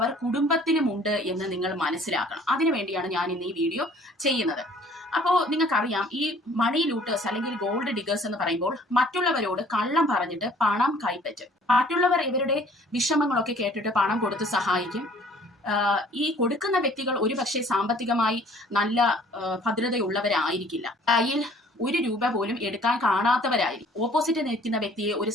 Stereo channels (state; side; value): normal; both; correlation 0.54